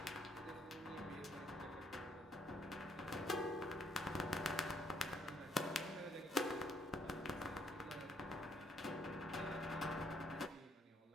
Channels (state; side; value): normal; both; correlation 0.68